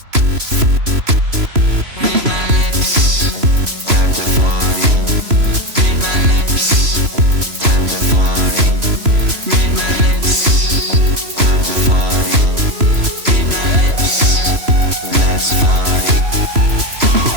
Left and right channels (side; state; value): left; late; 3.0 ms